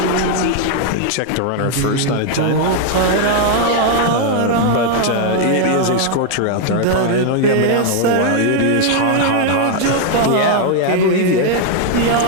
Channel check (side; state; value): both; different; correlation 0.00